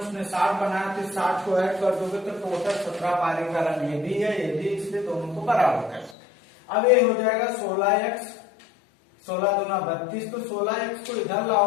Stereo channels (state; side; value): drops out; right; at 6.2 s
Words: 60 बनाया, तो 60 को ऐड कर दोगे तो टोटल 17 पारी का रन ये भी है ये भी, इसलिए दोनों को बराबर कर। अब ये हो जाएगा 16x, 16 दूना 32, तो 16x को इधर